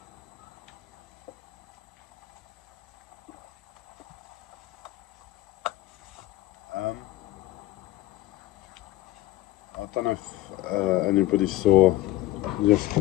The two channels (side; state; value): right; quieter; 16.6 dB